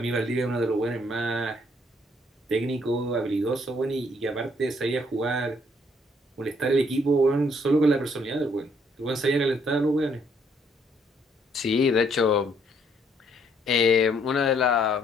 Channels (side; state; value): both; normal; correlation 0.67